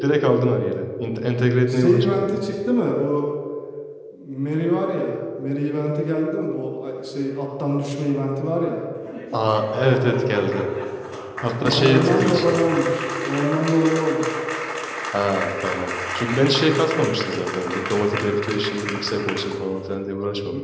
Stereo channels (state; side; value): identical; both; correlation 1.00